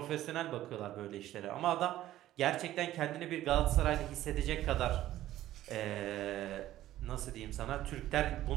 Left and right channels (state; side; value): quieter; left; 14.0 dB